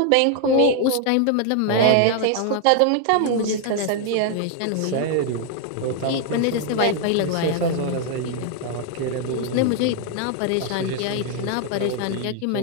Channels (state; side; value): different; both; correlation 0.00